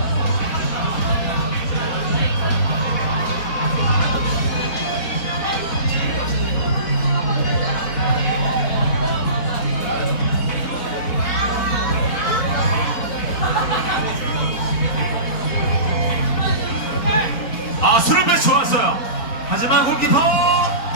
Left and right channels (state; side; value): late; right; 4.2 ms